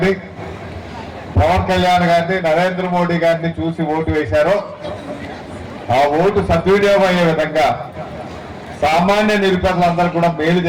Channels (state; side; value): identical; both; correlation 1.00